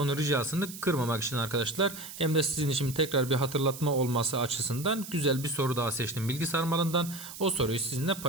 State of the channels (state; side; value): noise; right; hiss, 12 dB below the sound